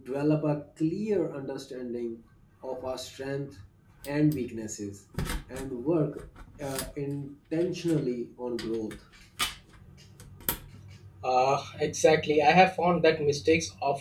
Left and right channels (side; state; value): both; identical; correlation 1.00